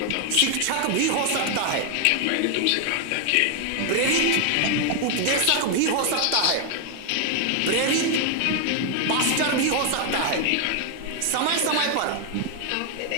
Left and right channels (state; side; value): different; both; correlation 0.00